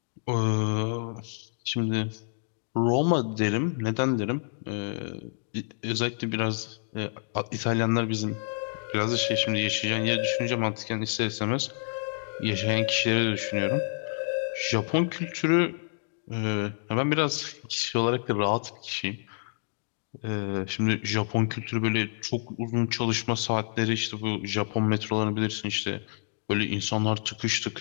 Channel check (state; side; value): silent; right; digital silence